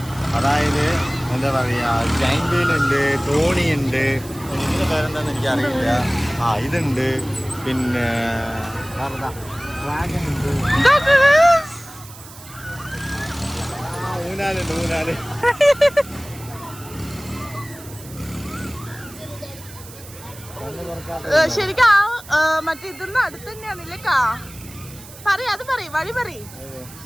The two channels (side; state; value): right; noise; hiss, 18 dB below the sound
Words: അതായത് എന്താ പറയുക, ജൈന്റ് വീൽ ഉണ്ട്, തോണി ഉണ്ട്, ഇതിൻ്റെ പേരെന്താണെന്ന് എനിക്കറിയില്ല. ഇതുണ്ട്, പിന്നെ ഡ്രാഗൺ ഉണ്ട്, ഊനാലുണ്ട്, ഊനാല്. ശരിക്കും മറ്റേ ഇതൊന്നും അടുത്ത് തന്നെയാണല്ലേ കാ? അത് വഴി പറയും.